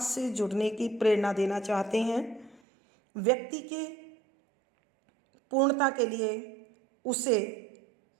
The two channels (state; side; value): drops out; left; at 2.6 s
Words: से जुड़ने की प्रेरणा देना चाहते हैं। व्यक्ति के पूर्णता के लिए उसे